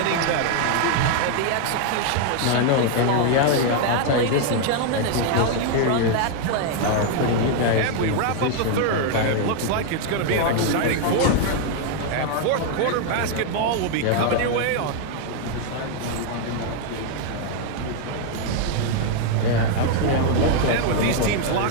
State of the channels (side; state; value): both; different; correlation 0.00